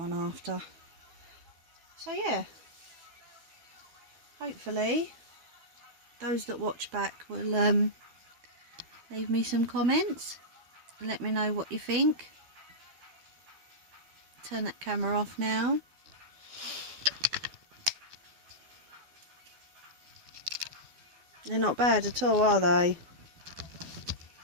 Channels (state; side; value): late; left; 12 ms